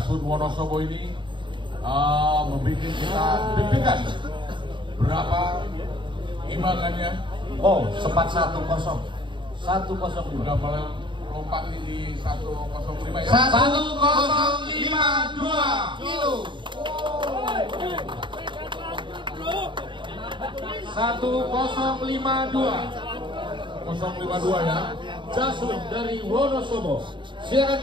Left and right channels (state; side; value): late; left; 0.23 ms